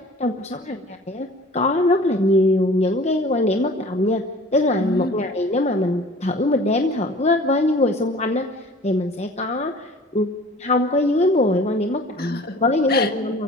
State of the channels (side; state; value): both; normal; correlation 0.46